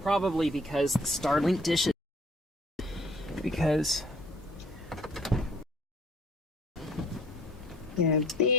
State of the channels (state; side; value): normal; both; correlation 0.56